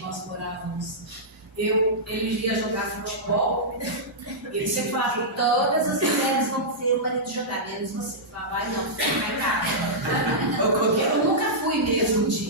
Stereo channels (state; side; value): normal; both; correlation -0.12